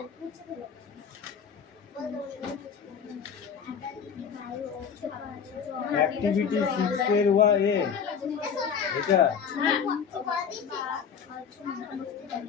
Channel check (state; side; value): quieter; right; 7.0 dB